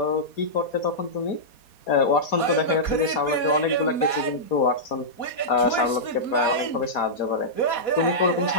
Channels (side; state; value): right; late; 4.2 ms